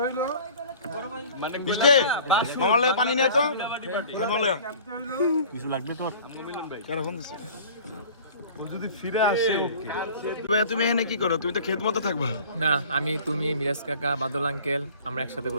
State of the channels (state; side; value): inverted; both; correlation -0.46